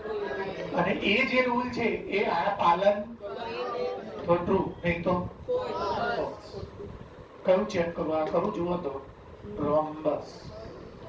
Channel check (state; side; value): identical; both; correlation 1.00